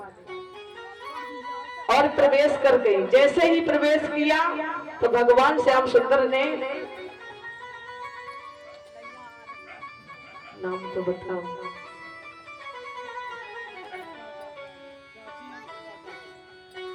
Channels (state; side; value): identical; both; correlation 1.00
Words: और प्रवेश कर गए। जैसे ही प्रवेश किया तो भगवान श्याम सुंदर ने, नाम तो बताओ,